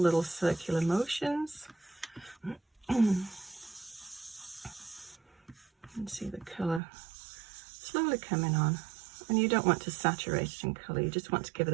circular motions. And see the colour slowly coming on. And you don't want to saturate it in colour, you just want to give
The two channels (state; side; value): drops out; left; at 6.8 s